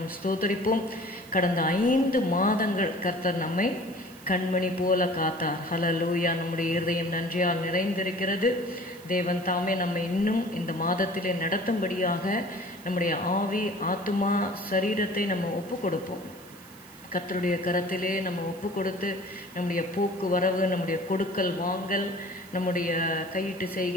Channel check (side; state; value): right; noise; hiss, 23 dB below the sound